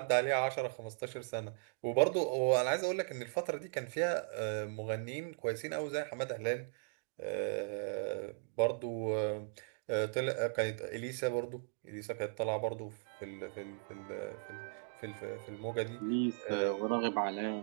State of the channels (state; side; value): silent; left; digital silence